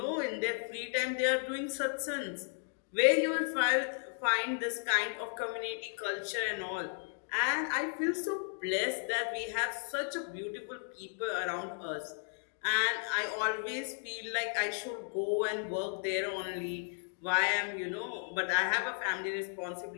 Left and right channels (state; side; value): silent; right; 55 dB below the other